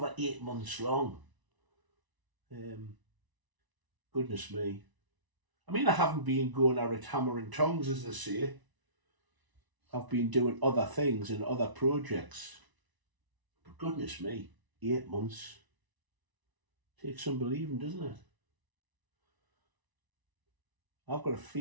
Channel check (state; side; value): late; left; 1.0 ms